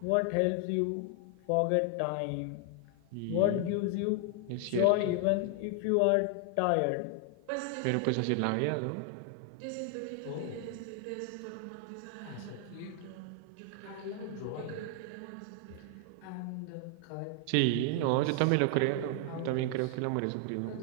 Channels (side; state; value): both; different; correlation 0.00